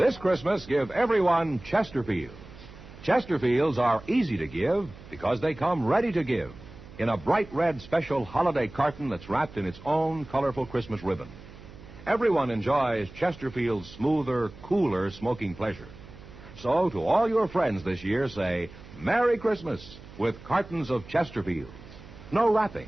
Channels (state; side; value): noise; right; hum, 18 dB below the sound